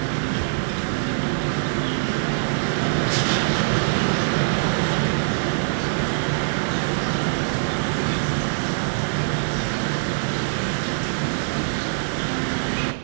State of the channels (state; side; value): silent; left; digital silence